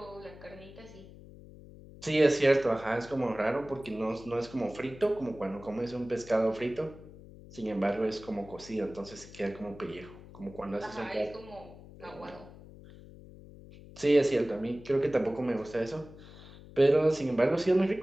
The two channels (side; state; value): left; noise; hum, 18 dB below the sound